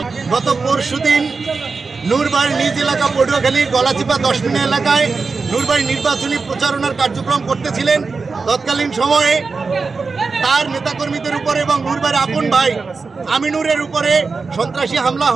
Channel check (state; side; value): quieter; left; 4.4 dB